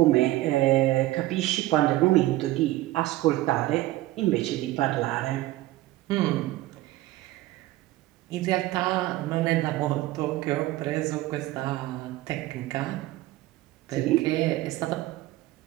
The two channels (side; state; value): left; quieter; 17.0 dB